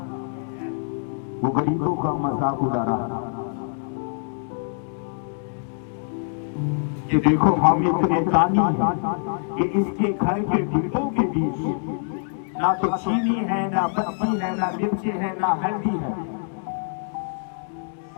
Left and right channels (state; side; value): silent; right; digital silence